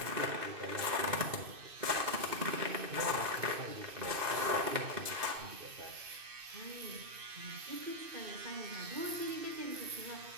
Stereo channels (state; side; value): late; left; 2.6 ms